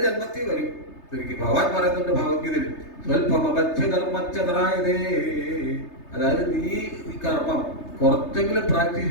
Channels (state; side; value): late; right; 3.3 ms